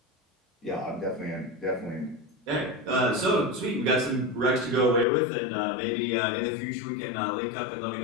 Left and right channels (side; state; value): right; drops out; at 5.1 s